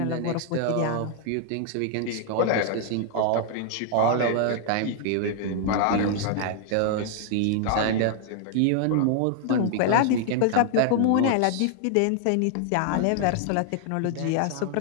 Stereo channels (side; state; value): both; different; correlation 0.00